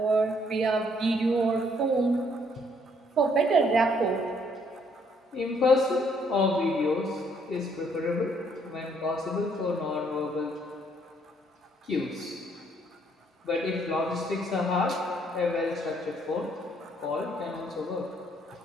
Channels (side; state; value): both; normal; correlation 0.67